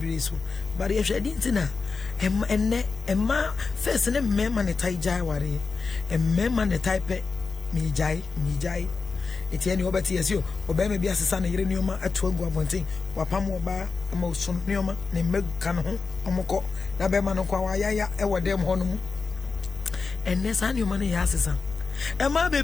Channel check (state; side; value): quieter; right; 4.6 dB